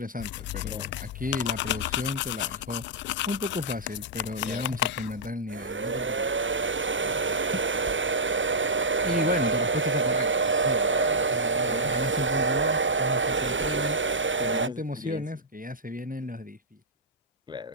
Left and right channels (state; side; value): normal; both; correlation -0.10